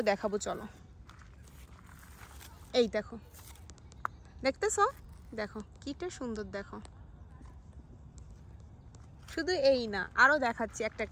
দেখাবো, চলো। এই দেখো, দেখতেছো? দেখো কিটা সুন্দর, দেখো। শুধু এই না, আরও দেখাচ্ছি একটা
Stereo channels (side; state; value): both; identical; correlation 1.00